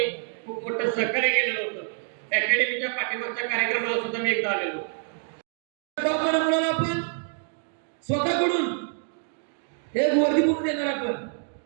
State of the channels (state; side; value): silent; left; 60 dB below the other